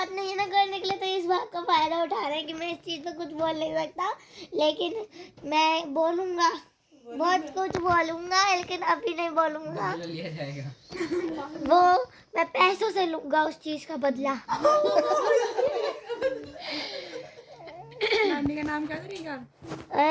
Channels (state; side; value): identical; both; correlation 1.00